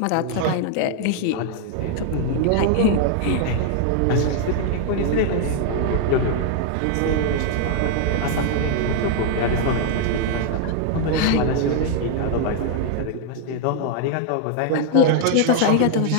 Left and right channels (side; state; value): both; different; correlation 0.00